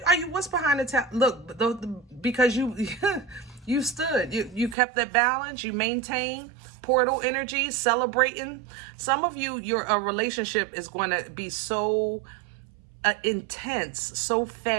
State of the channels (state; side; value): drops out; left; at 4.8 s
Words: What's behind the tower? Look, because you you stood, you kept that balance, you maintained portal energy, celebrating. Some of you, your relationship is going to be so intense, so